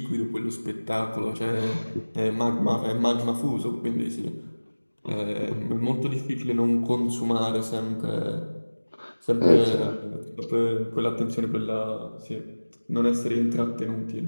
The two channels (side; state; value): both; inverted; correlation -1.00